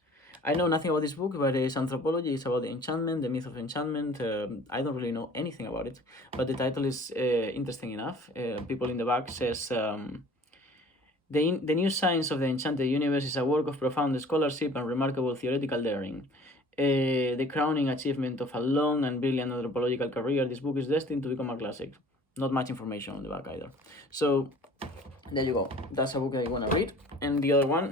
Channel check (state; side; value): normal; both; correlation 0.49